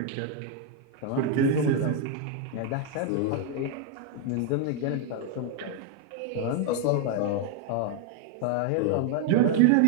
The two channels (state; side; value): different; both; correlation 0.00